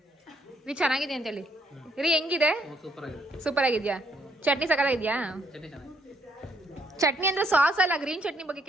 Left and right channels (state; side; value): normal; both; correlation 0.70